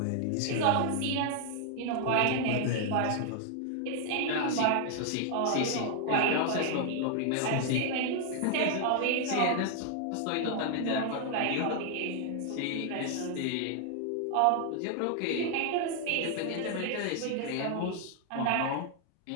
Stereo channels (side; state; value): both; different; correlation 0.00